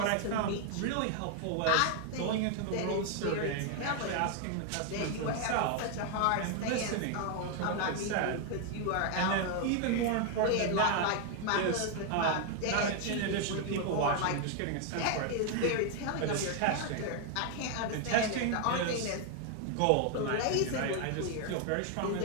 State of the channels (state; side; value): different; both; correlation 0.00